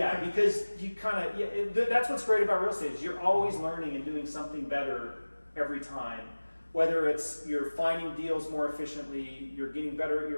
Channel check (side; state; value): both; inverted; correlation -1.00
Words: because you kind of, that's what's great about real estate is you're always learning and doing something better every time. Whether it's you're finding deals more efficiently, you're getting better at